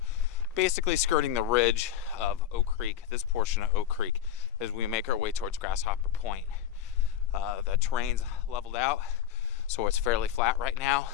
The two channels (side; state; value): right; quieter; 10.2 dB